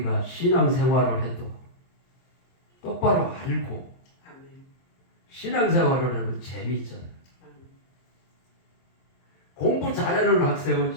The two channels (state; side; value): late; right; 23 ms